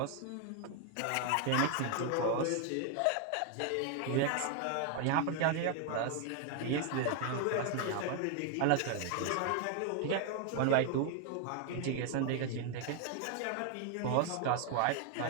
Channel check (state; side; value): different; both; correlation 0.01